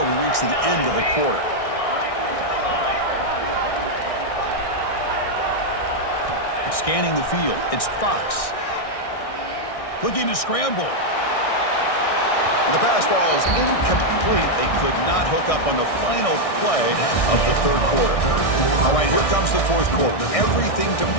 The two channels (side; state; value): right; late; 1.6 ms